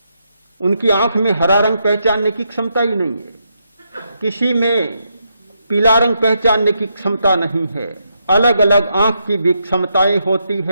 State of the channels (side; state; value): both; inverted; correlation -0.81